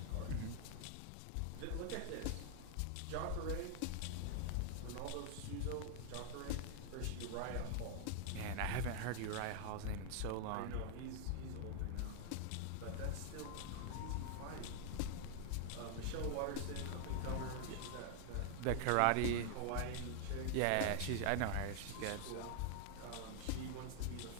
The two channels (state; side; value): different; both; correlation 0.00